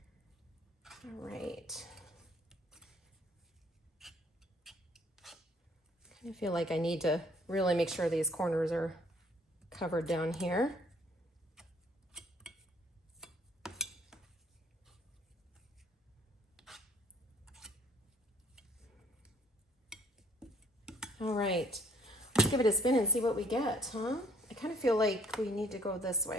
All right. I kind of feel like I need to really make sure these corners are covered down here. All right, let's give it a spin and see what we get, huh? I kind of feel like we need to go this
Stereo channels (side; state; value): both; normal; correlation 0.59